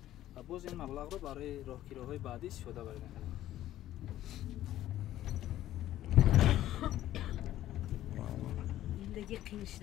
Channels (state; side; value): quieter; right; 13.4 dB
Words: و باز این مبلغ رو برای راهگیری‌های بعدی استفاده برید. زندگی